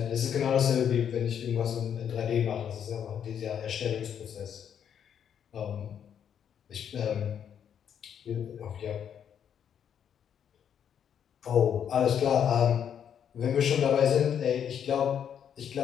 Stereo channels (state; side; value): quieter; right; 8.6 dB